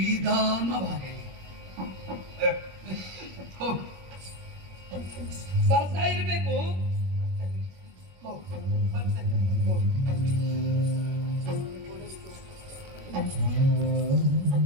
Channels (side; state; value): left; late; 21 ms